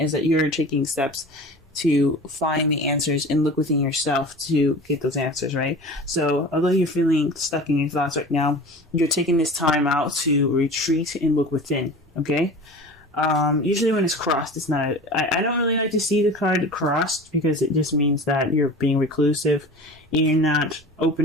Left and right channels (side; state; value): both; normal; correlation 0.37